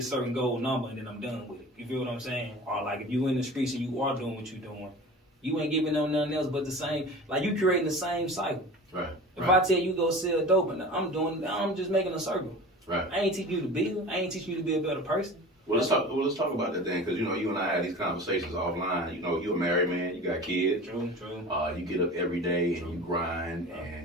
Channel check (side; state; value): both; normal; correlation 0.37